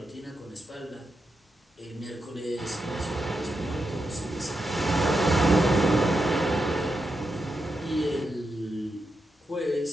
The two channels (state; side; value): normal; both; correlation 0.86